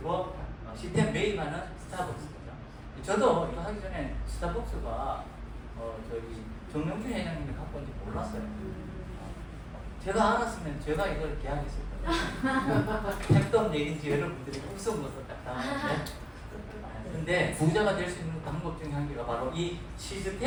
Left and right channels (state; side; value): identical; both; correlation 1.00